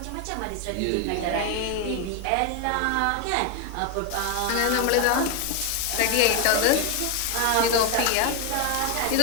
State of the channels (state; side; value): different; both; correlation 0.01